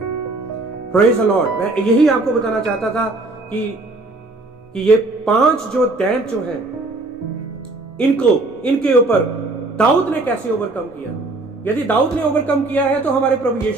Praise the lord. मैं यही आपको बताना चाहता था कि ये 5 जो दैंत जो हैं, इनके ऊपर दाऊद ने कैसे ओवरकम किया। यदि दाऊद ने ओवरकम किया है तो हमारे प्रभु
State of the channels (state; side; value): quieter; left; 3.1 dB